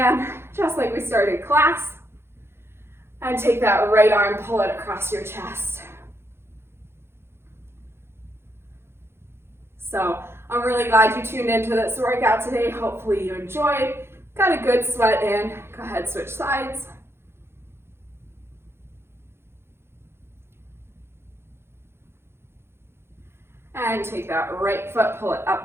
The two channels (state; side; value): late; left; 0.12 ms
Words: just like we started class. And take that right arm, pull it across your chest. So I'm really glad you tuned into this workout today. Hopefully you enjoyed. Got a good sweat in. Go ahead, switch sides. And take that right foot, pull it